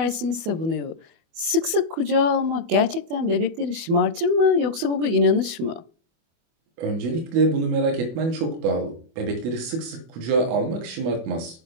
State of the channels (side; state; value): left; late; 24 ms